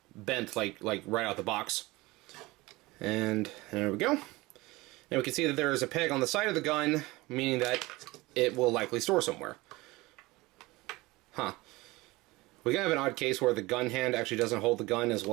bent like right out the box. And there we go. And we can see that there is a peg on the side of the gun, meaning that it will likely store somewhere. Huh. We have an odd case where the gun hand actually doesn't hold the gun as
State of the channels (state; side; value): quieter; left; 21.2 dB